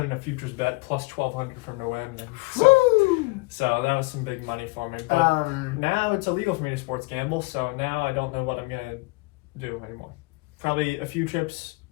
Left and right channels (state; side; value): quieter; right; 25.8 dB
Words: in a futures bet plus 1,200 for him to win. So that was some big money for me. But now it's illegal for me to sports gamble, so now I don't know what I'm going to do anymore. Probably a few trips